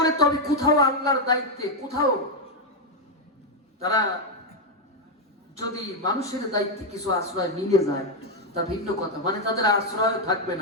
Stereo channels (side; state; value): both; normal; correlation 0.03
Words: তবে কোথাও আল্লাহর দায়িত্বে, কোথাও তারা যদি মানুষের দায়িত্বে কিছু আশ্রয় মিলে যায় তা ভিন্ন কথা, মানে তাদের আশ্রয় থাকবে